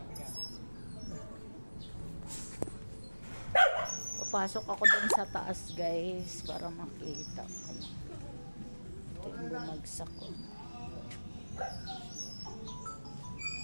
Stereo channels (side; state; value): both; inverted; correlation -1.00